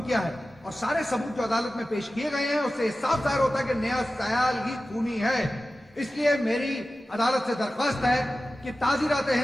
किया है और सारे सबूत जो अदालत में पेश किए गए हैं उससे साफ जाहिर होता है कि नेहा सयाल ही खूनी है। इसलिए मेरी अदालत से दरख्वास्त है कि ताजीरात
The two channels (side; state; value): both; normal; correlation 0.95